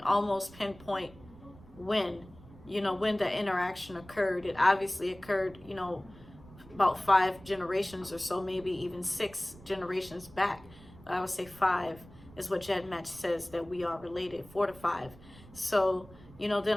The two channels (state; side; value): noise; right; rumble, 21 dB below the sound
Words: almost pinpoint when, you know, when the interaction occurred. It obviously occurred, you know, about 5 generations or so, maybe even 6 generations back. I would say 5 is what GEDmatch says that we are related, 4 to 5. So, you know,